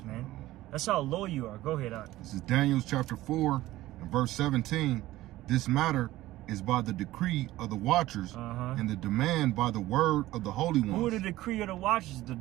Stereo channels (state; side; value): quieter; left; 16.3 dB